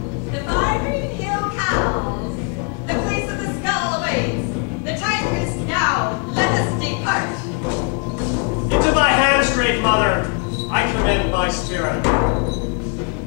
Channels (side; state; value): right; quieter; 34.9 dB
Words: The fiery hill cows, the place of the skull awaits. The time is now. Let us depart. Into thy hands, great mother, I commend my spirit.